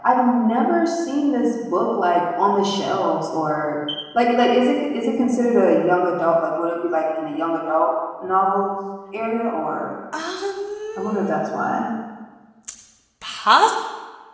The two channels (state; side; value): identical; both; correlation 1.00